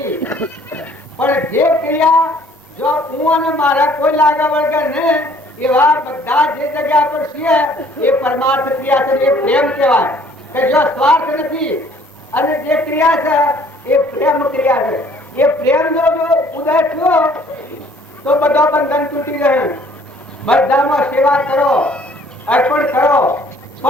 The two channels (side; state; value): both; normal; correlation 0.58